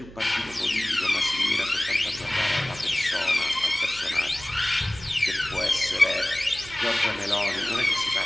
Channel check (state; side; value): noise; right; hum, 18 dB below the sound